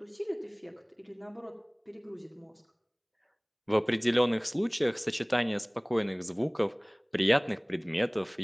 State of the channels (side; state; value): both; identical; correlation 1.00